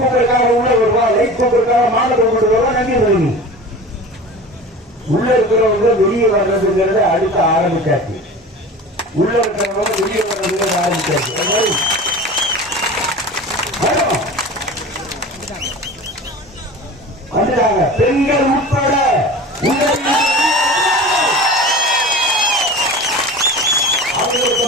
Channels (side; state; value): both; normal; correlation 0.35